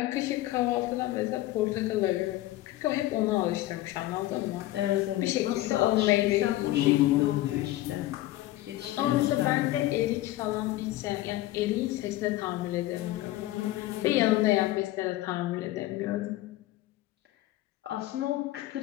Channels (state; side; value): quieter; right; 16.2 dB